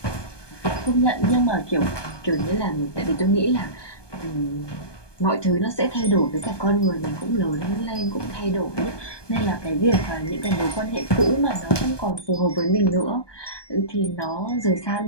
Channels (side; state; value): right; late; 1.2 ms